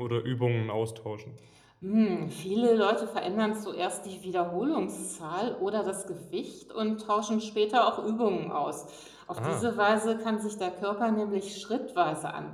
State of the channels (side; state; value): both; identical; correlation 1.00